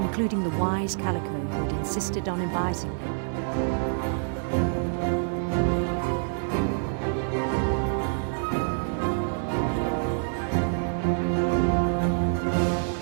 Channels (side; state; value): left; silent; 60 dB below the other